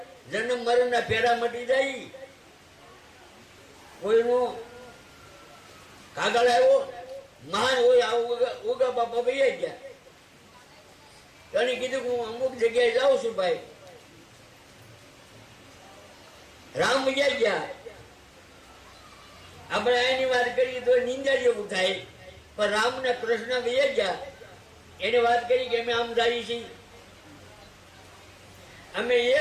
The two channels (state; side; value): identical; both; correlation 1.00